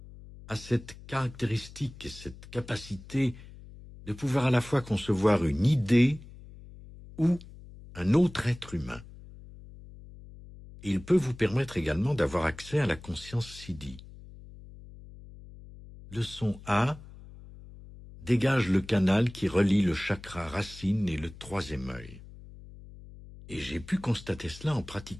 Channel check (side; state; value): left; noise; hum, 18 dB below the sound